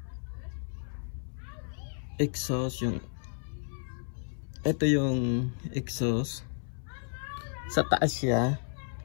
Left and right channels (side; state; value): right; silent; 56 dB below the other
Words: exhaust. Ito yung exhaust, sa taas siya.